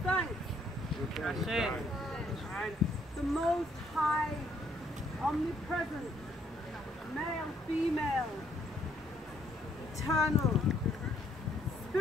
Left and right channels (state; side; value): normal; both; correlation 0.68